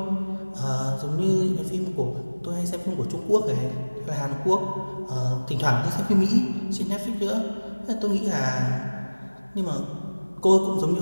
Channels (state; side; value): inverted; both; correlation -1.00